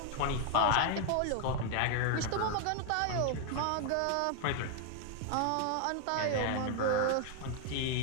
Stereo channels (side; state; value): both; different; correlation 0.00